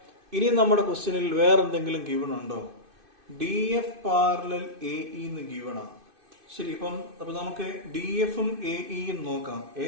ഇനി നമ്മുടെ ക്വസ്റ്റ്യനിൽ വേറെ എന്തെങ്കിലും ഗിവൺ ഉണ്ടോ? D F parallel A E എന്ന് ഗിവണാ. ശരി, അപ്പൊ നമുക്ക് ഡി എഫും എ ഇയും നോക്കാം.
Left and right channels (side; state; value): left; late; 2.5 ms